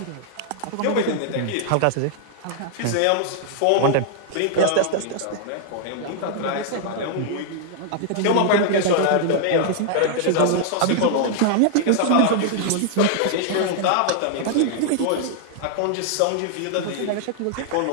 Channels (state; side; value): different; both; correlation -0.01